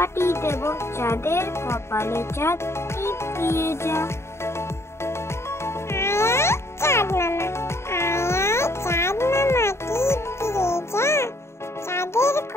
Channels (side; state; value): right; late; 0.13 ms